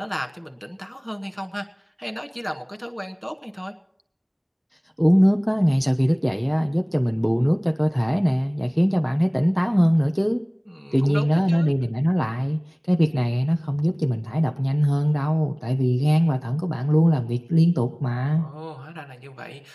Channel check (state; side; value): identical; both; correlation 1.00